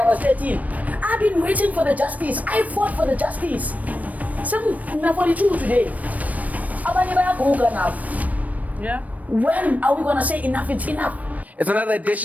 was 13. I've been waiting for the justice. I fought for the justice. Some 42 today. Yeah. When are we gonna say enough is enough? It's another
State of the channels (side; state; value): left; late; 0.071 ms